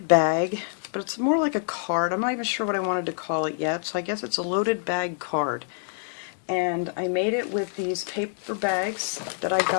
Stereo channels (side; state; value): right; silent; digital silence